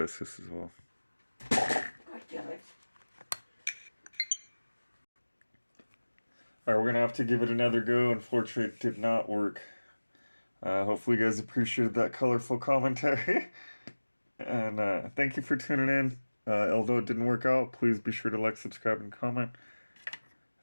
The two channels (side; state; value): both; inverted; correlation -1.00